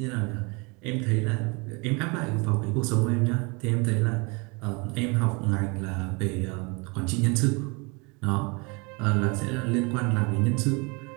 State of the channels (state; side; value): quieter; left; 29.8 dB